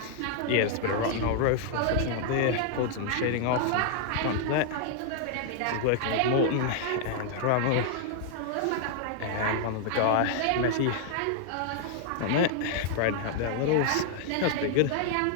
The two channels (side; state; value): both; different; correlation -0.01